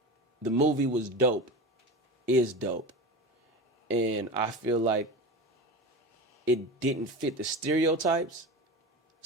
The movie was dope, is dope. And I feel like it didn't fit the stereotypes.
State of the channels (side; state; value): both; normal; correlation 0.28